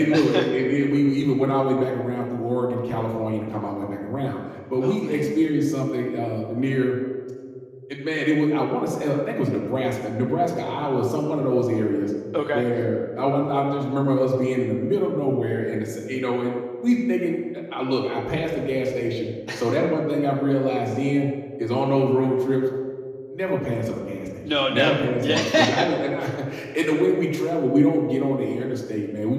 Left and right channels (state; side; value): identical; both; correlation 1.00